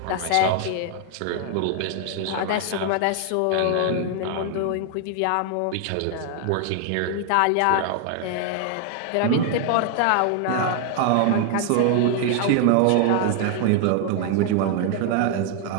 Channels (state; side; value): different; both; correlation 0.00